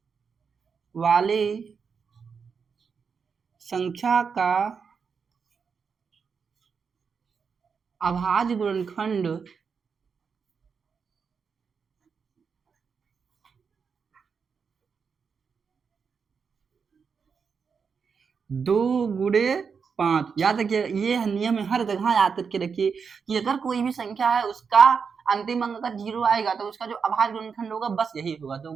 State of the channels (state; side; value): quieter; left; 5.9 dB